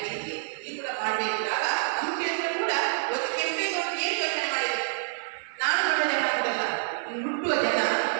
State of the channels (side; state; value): left; silent; digital silence